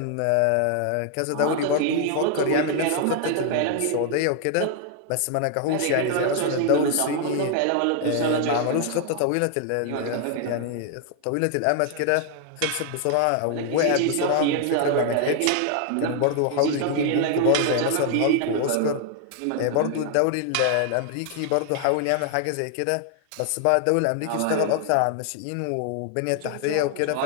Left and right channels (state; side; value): different; both; correlation 0.00